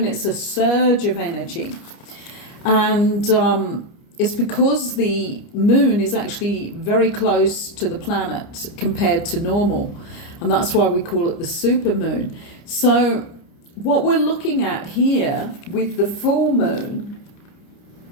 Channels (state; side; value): late; right; 30 ms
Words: it's a surge of energy, and it's because the moon is actually very close to the planet compared to normal. And that's why we call it the supermoon. So what we're looking at here with the full moon,